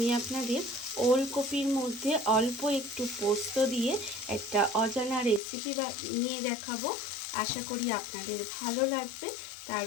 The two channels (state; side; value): drops out; right; at 5.4 s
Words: আপনাদের ওলকপির মধ্যে অল্প একটু পোস্ত দিয়ে একটা অজানা রেসিপি নিয়ে দেখাবো। আশা করি আপনাদের ভালো লাগবে। তার